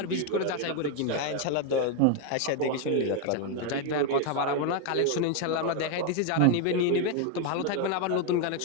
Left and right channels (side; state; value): both; different; correlation 0.01